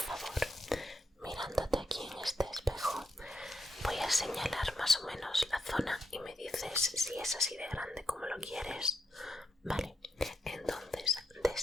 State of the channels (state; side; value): normal; both; correlation 0.82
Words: Mirándote aquí en este espejo, voy a señalar más o menos la zona y me dices si es así de grande como lo quieres. Vale, entonces